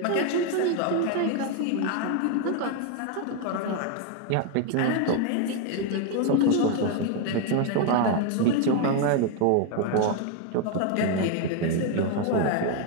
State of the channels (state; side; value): different; both; correlation 0.01